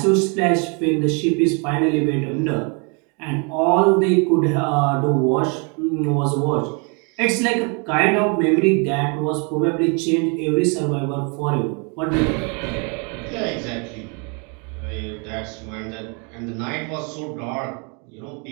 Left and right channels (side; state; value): left; quieter; 34.5 dB